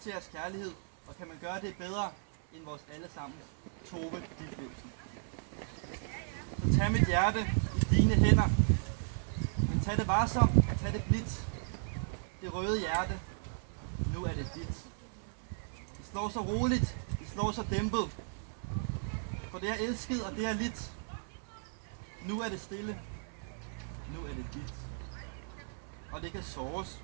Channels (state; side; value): silent; left; 54 dB below the other